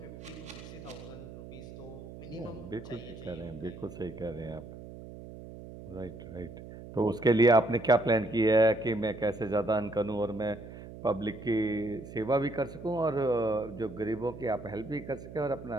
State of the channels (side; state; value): right; noise; hum, 14 dB below the sound